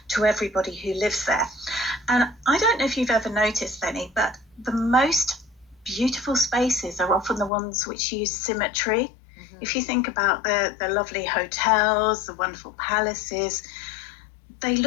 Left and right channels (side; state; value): right; drops out; at 7.5 s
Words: to everybody who lives there. And I don't know if you've ever noticed, Lenny, but the most beautiful spaces are often the ones which use symmetry. If you think about the lovely hotels, the wonderful palaces, they